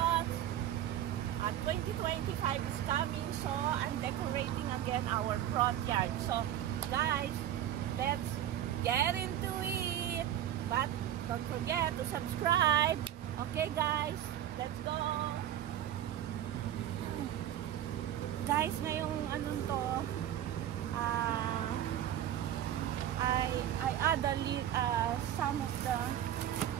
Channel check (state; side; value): quieter; left; 11.4 dB